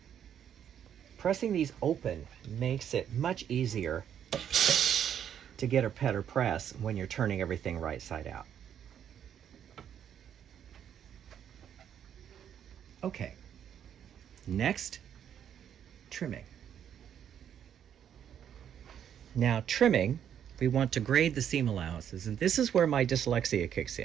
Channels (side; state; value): left; quieter; 9.2 dB